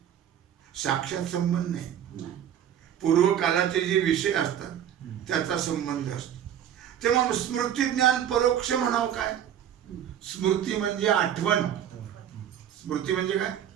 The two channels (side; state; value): left; quieter; 9.9 dB